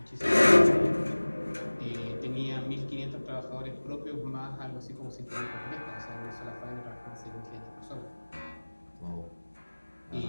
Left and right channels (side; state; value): both; inverted; correlation -1.00